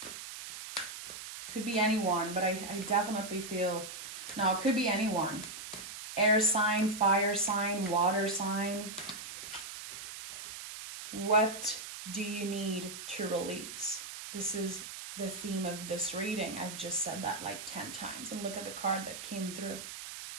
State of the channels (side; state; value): right; noise; hiss, 10 dB below the sound